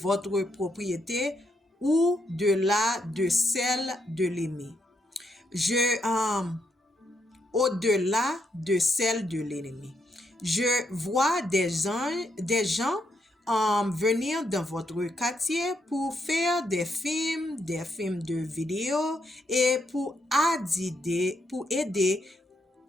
propriété ou de celle de l'ennemi. Au-delà de celle de l'ennemi. Je vois des gens venir dans votre quartier pour faire des films de vidéo et pour aider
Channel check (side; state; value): both; normal; correlation 0.78